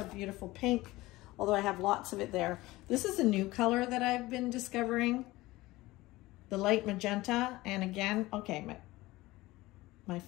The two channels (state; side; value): quieter; right; 19.1 dB